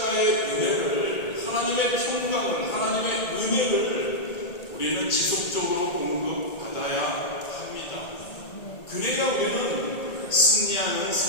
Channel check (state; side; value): late; right; 1.8 ms